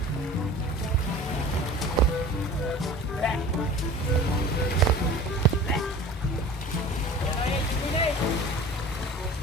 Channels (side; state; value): both; normal; correlation 0.40